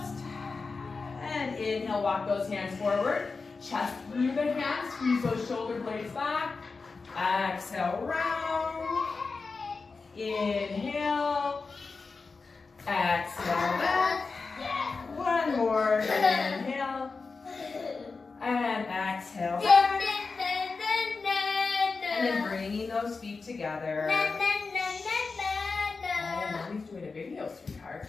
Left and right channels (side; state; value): right; quieter; 4.3 dB